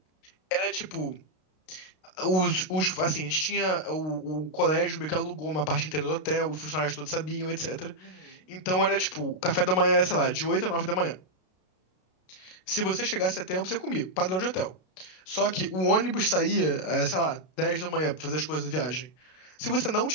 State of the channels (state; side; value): late; right; 32 ms